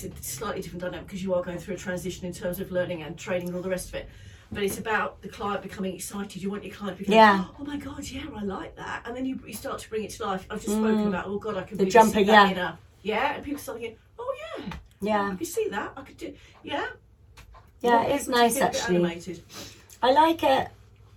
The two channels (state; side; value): identical; both; correlation 1.00